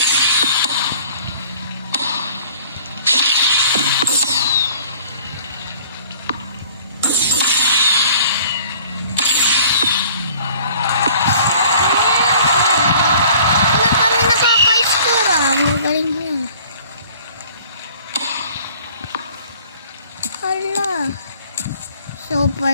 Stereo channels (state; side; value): inverted; both; correlation -0.52